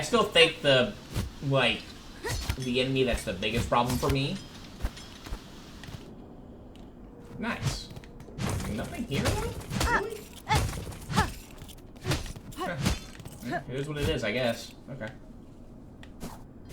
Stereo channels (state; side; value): identical; both; correlation 1.00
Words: still think the enemy that's the biggest problem for me. Nice. Nothing here, though? Really? It is what it is, I guess. Okay.